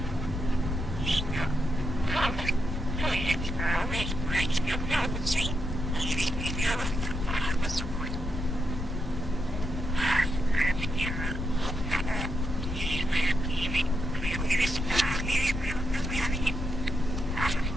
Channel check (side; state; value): left; noise; rumble, 3 dB below the sound